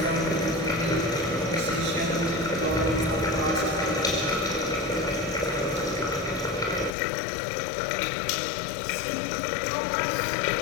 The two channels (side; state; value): right; drops out; at 7.0 s